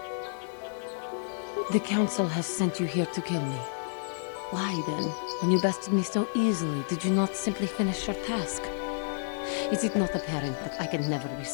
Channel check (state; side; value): silent; right; digital silence